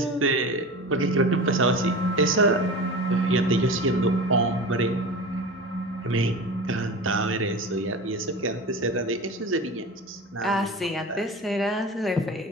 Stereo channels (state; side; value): normal; both; correlation 0.31